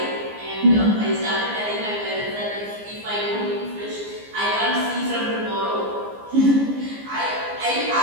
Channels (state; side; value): late; left; 14 ms